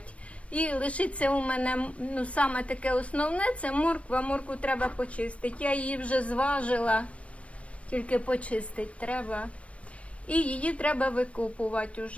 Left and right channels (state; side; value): late; right; 0.063 ms